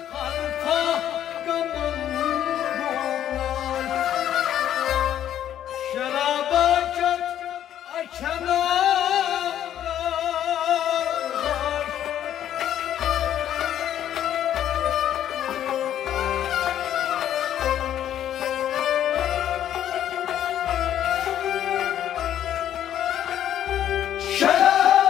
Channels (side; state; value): right; quieter; 10.9 dB